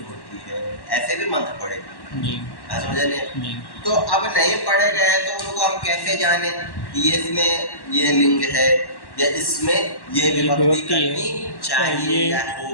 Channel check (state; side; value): late; right; 1.1 ms